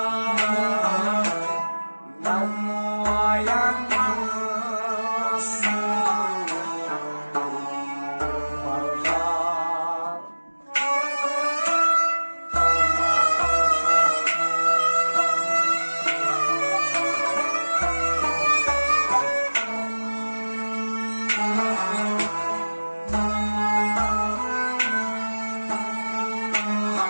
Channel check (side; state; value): both; inverted; correlation -1.00